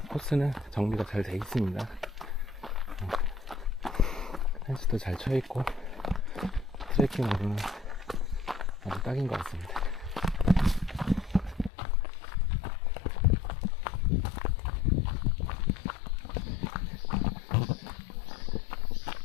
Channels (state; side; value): drops out; right; at 11.7 s